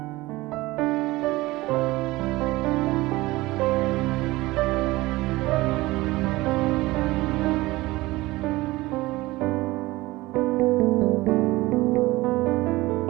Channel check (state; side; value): quieter; left; 19.7 dB